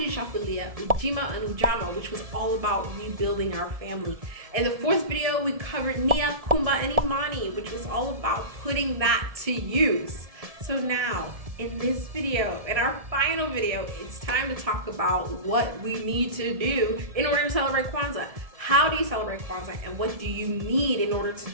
Ujima, and Ujama, which was all about rebuilding our family. In the fourth video, we covered Nia, Kumba, and Imani, which was all about putting that to use. So now, in this video, in our final video, it's time to talk about what we need to do in order to celebrate Kwanzaa. How do you celebrate Kwanzaa and what do you need in order to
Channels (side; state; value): left; late; 1.7 ms